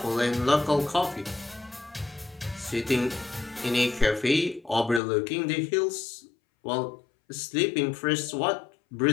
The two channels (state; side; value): drops out; right; at 5.0 s